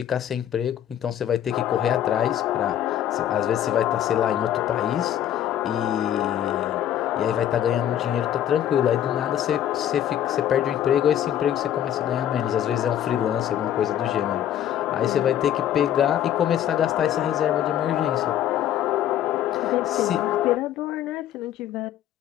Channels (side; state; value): right; quieter; 10.9 dB